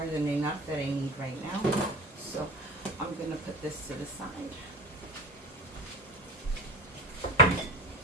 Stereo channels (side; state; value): both; normal; correlation 0.30